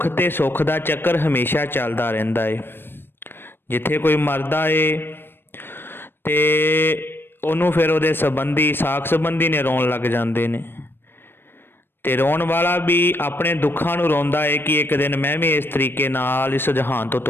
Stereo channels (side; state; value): right; late; 0.10 ms